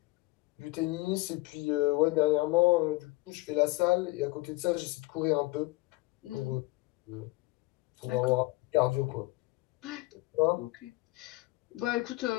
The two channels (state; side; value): quieter; right; 20.8 dB